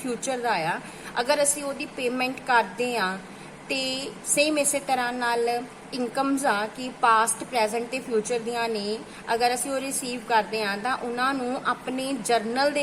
का आ, अगर असी वो पेमेंट करते हैं तो सेम इस तरह नाल इनकम्स आ कि पास्ट प्रेजेंट ते फ्यूचर दियां ने, अगर असी वो रिसीव करते हैं तो उन्होंने अपने जर्नल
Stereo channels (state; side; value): identical; both; correlation 1.00